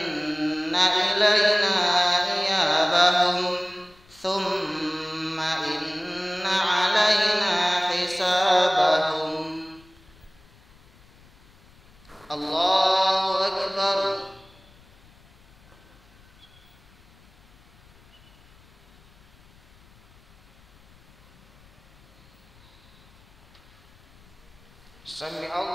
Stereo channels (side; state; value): left; noise; rumble, 28 dB below the sound